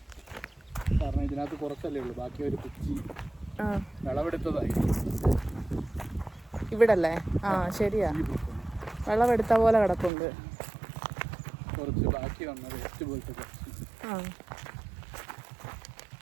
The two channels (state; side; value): drops out; left; at 10.1 s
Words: കാരണം ഇതിനകത്ത് കുറച്ചല്ലേ ഉള്ളൂ, ബാക്കി ഒരു കുച്ചി വിളവെടുത്തതായി ഇവിടല്ലേ? ആ, ശരിയാ, വിളവെടുത്ത പോലെ കിടപ്പുണ്ട്. കുറച്ച് ബാക്കി വന്ന വേസ്റ്റ് പോലത്തെ കുറച്ച്. ആ,